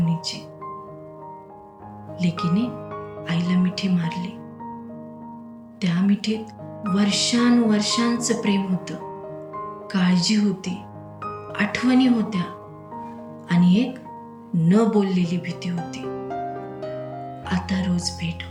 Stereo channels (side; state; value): both; identical; correlation 1.00